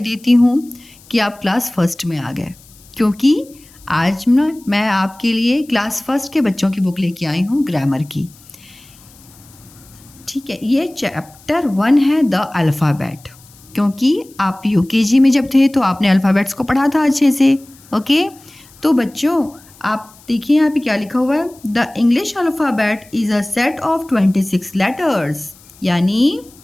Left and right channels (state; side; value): noise; left; hiss, 25 dB below the sound